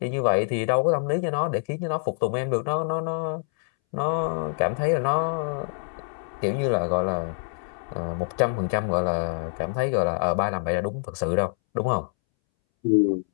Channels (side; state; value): right; silent; 61 dB below the other